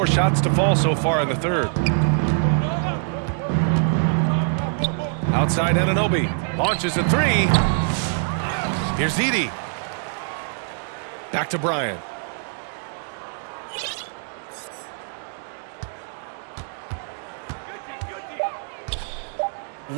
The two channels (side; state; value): left; silent; 61 dB below the other